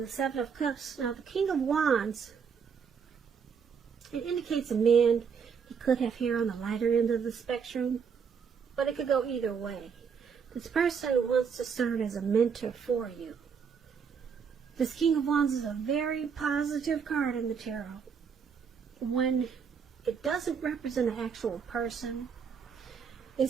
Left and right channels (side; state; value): left; quieter; 6.5 dB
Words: the Seven of Cups. Now the King of Wands, it indicates a man. He could have hair on the lighter end of the spectrum, but it could go either way. This person wants to serve as a mentor for you. This King of Wands is a very positive card in the tarot. When it doesn't represent an actual person, it